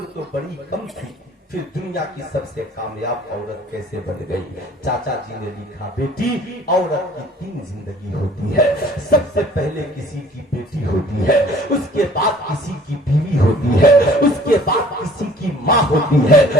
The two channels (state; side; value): normal; both; correlation 0.52